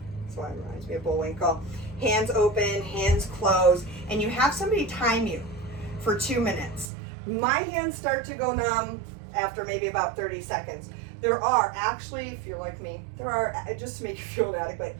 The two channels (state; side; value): drops out; left; at 6.9 s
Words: That's why it reminds me of Bullwinkle. Hands open, hands closed, and you have somebody time you for 2 minutes. My hands start to go numb after maybe about 30 seconds. There are actually, if you're like me, just to make you feel inadequate,